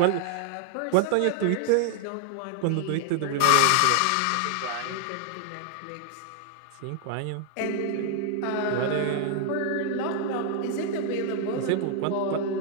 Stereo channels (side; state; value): both; different; correlation 0.00